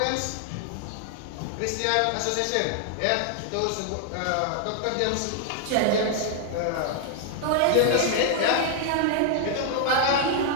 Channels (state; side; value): different; both; correlation -0.01